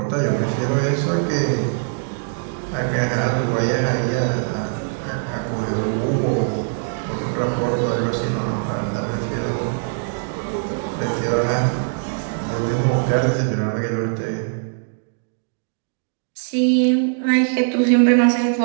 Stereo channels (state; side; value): silent; left; digital silence